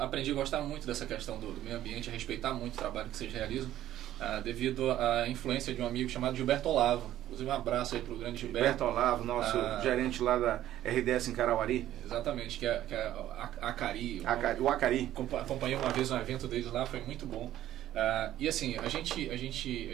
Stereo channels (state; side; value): quieter; left; 12.9 dB